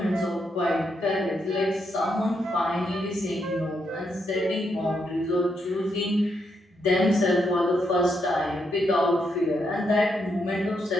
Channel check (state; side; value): normal; both; correlation 0.79